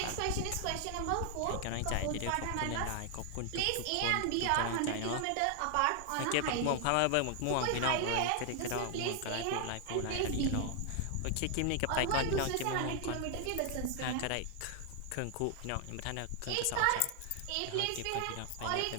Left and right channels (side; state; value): both; different; correlation 0.00